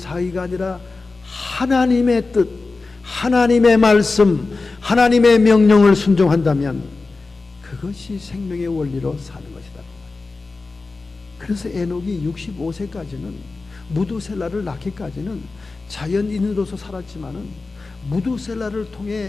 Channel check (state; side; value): quieter; right; 3.8 dB